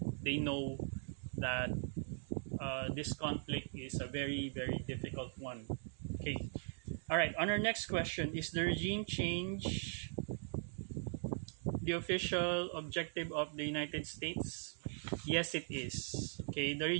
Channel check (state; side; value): silent; left; digital silence